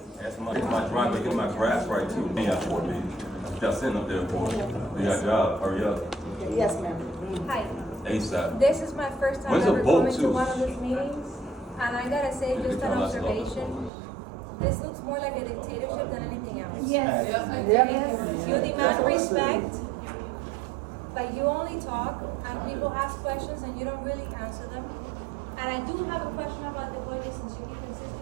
Ask my driveway, get my grass right too. Yeah, for me. Y'all sitting up there for it. You got a job, hurry up. Yes, ma'am. Hi. ASAP. This is my first time When's the ever vote coming to too? one of these meetings, and I gotta say, just an observation. This looks more like a dictatorship than anything else. Yes. You demand respect, but you only talk, and people ask questions, and you don't really answer them. And I do have a question about the budget, since you keep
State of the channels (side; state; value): left; drops out; at 13.9 s